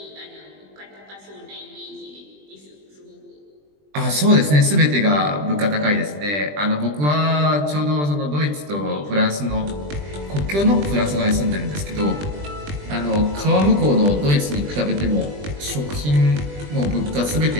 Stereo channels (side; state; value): left; late; 20 ms